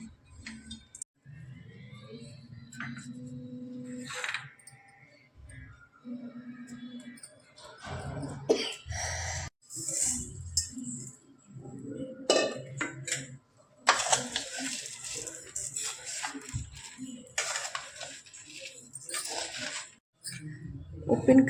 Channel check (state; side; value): identical; both; correlation 1.00